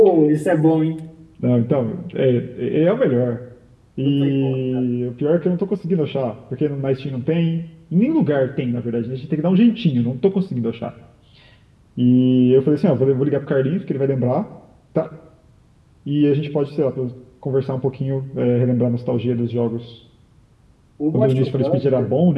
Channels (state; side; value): identical; both; correlation 1.00